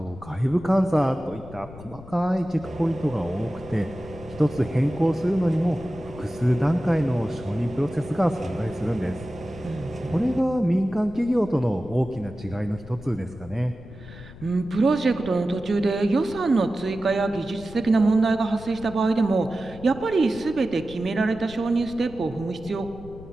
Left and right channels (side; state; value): left; noise; rumble, 17 dB below the sound